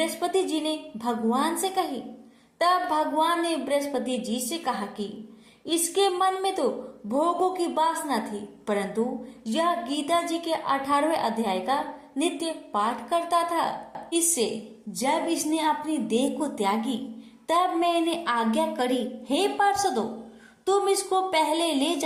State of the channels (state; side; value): identical; both; correlation 1.00